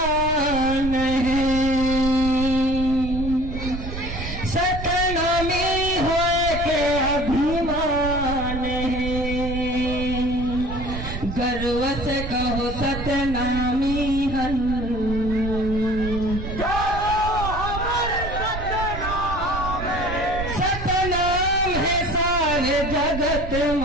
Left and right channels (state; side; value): noise; right; rumble, 7 dB below the sound